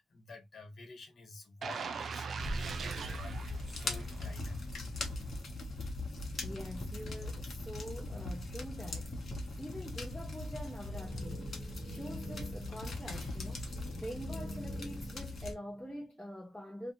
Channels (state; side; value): normal; both; correlation 0.84